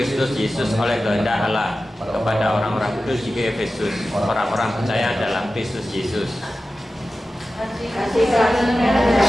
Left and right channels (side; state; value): both; normal; correlation 0.94